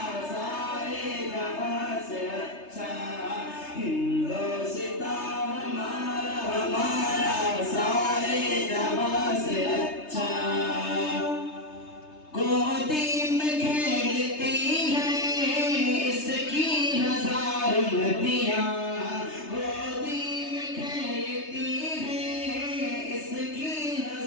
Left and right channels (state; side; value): late; right; 3.3 ms